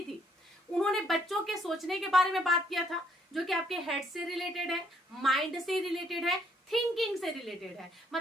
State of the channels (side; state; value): both; normal; correlation 0.67